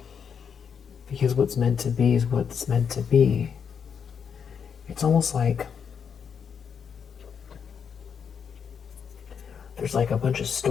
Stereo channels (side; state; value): right; quieter; 7.0 dB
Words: Because what's meant to be is what's meant to be. It's almost like there's like a bunch of